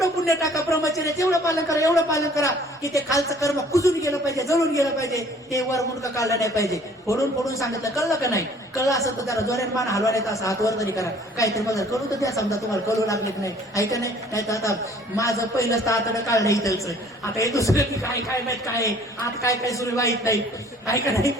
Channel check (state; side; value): normal; both; correlation 0.55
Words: पुण्य टाका, ब्रह्मचर्याचं एवढं पालन करा, एवढं पालन करा की ते खालचं कर्म कुजून गेलं पाहिजे, जळून गेलं पाहिजे, ते वर मुंडकं काढलं नाही पाहिजे. फोडून फोडून सांगितलं, कळलं का नाही? कळलं असं तर त्याला जोऱ्यान मान हलवा, नाही तर असं हात वर तरी करा. काहीतरी मला कळू तर द्या, समजा तुम्हाला कळू लागलेत नाही, ऐका नाही. नाही तर आता माझं पहिलं तातडं काढलं इथलचं, आता हे दुसरं काय काय माहित काय आहे, आता काय काय सुरू माहित नाही, ऐका नाही.